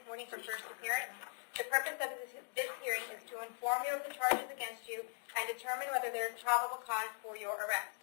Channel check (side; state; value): right; silent; 51 dB below the other